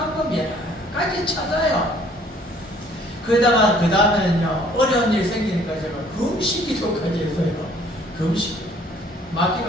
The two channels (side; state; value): both; normal; correlation 0.58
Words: 여러 가지 찾아요. 그 다음에는요 어려운 일 생기니까 제가 금식 기도까지 해서요. 금식 막